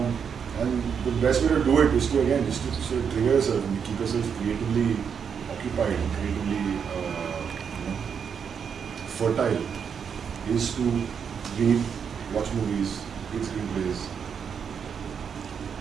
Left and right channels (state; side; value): quieter; left; 7.0 dB